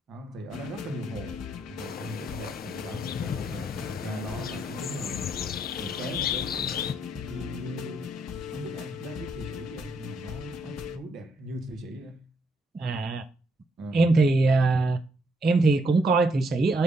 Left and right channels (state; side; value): normal; both; correlation 0.74